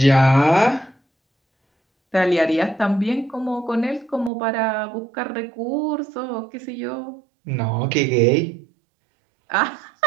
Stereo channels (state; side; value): drops out; left; at 4.3 s